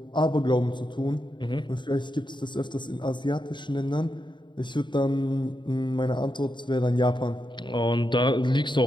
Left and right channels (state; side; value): late; right; 0.23 ms